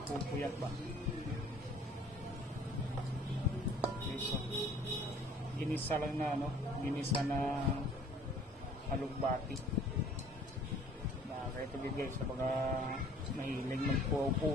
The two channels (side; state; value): both; normal; correlation 0.53